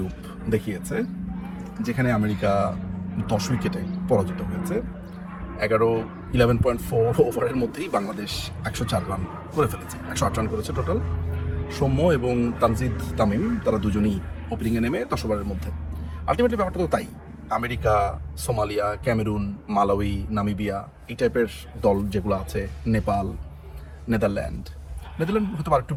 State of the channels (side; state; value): both; identical; correlation 1.00